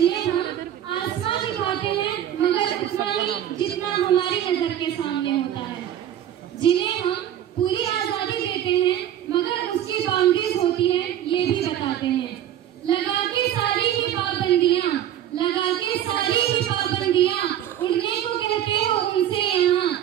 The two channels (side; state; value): left; quieter; 11.1 dB